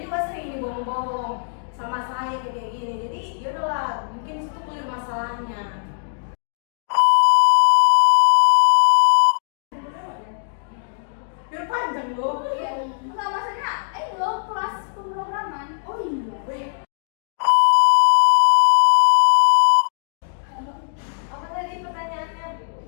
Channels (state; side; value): silent; right; 65 dB below the other